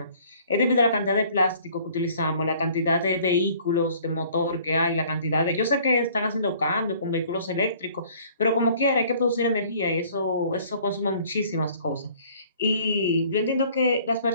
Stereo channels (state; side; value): inverted; both; correlation -0.55